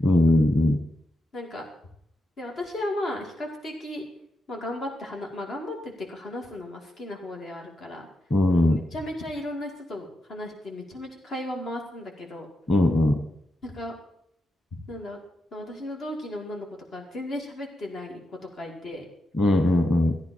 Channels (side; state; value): both; normal; correlation 0.85